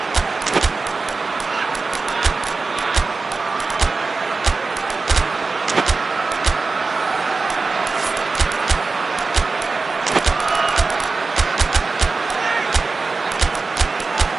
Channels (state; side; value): quieter; left; 4.0 dB